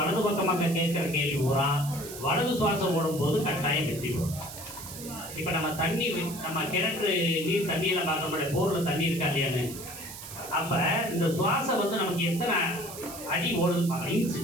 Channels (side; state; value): right; noise; hiss, 12 dB below the sound